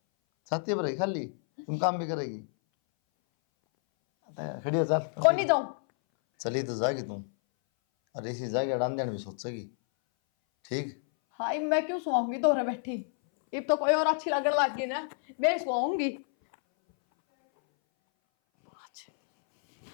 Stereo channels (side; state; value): right; silent; 58 dB below the other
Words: छाती पर रही खाली, तुम काम भी करेगी। खड़ी हो चल। कौन नहीं जाऊं। चली तो जागी तुम, और इसी जाके अड़ान देने भी सोचेगी। ठीक हाय मैं क्यों सुहाऊंगी दोहरे बैठी, अब तो कोई और अच्छी लगने लग गई ना, मैं सुहाऊंगी।